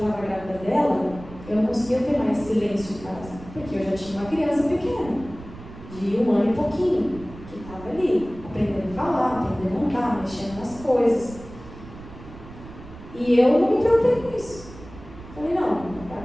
grávida dela, eu não conseguia ter mais silêncio em casa, porque eu já tinha uma criança pequena, de 1 ano e pouquinho, que estava ali, aprendendo a falar, aprendendo a andar, mexendo nas coisas. E eu não me preocupei com isso. Falei, não,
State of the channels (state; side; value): noise; right; rumble, 16 dB below the sound